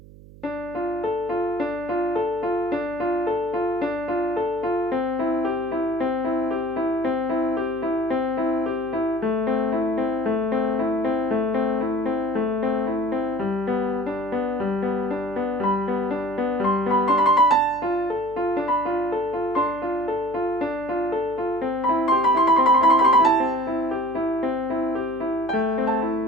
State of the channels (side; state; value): right; noise; hum, 20 dB below the sound